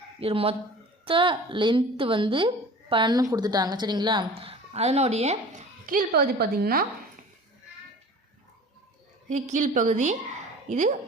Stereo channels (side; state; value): both; normal; correlation 0.42